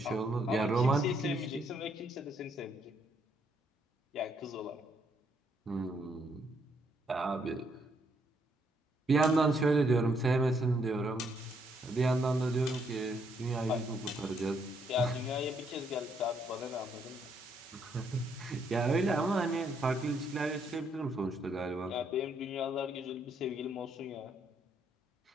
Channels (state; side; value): normal; both; correlation 0.72